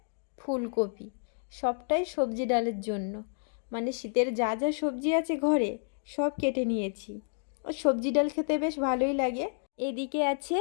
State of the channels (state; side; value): silent; right; digital silence